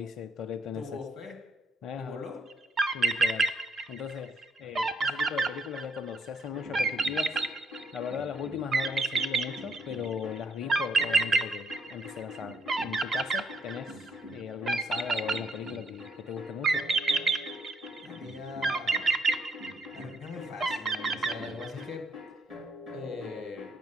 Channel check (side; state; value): both; normal; correlation 0.71